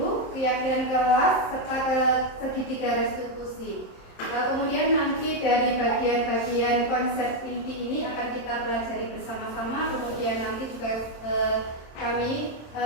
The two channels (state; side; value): late; right; 27 ms